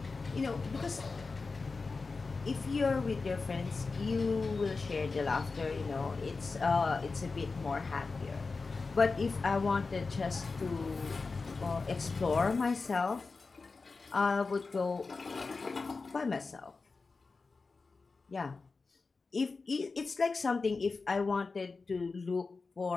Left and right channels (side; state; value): right; quieter; 4.2 dB